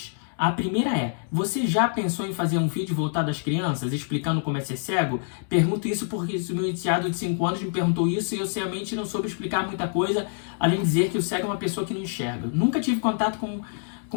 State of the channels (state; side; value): silent; right; digital silence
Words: A primeira é, você já pensou em fazer um vídeo voltado às crianças, explicando como é ser cego? Pergunto isso porque o meu enteado de 5 anos me perguntou isso e eu realmente não soube explicar muita coisa, além de dizer que o cego é uma pessoa que não enxerga. Nunca tive contato